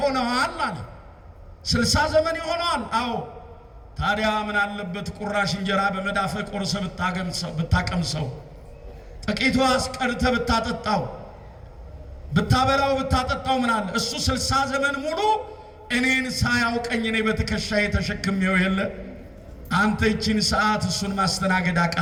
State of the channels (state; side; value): identical; both; correlation 1.00